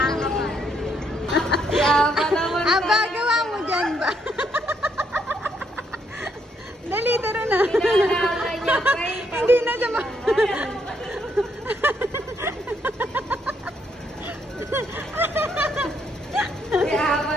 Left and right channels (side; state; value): both; normal; correlation 0.74